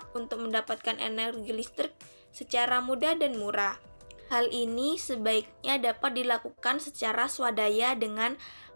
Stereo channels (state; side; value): inverted; both; correlation -1.00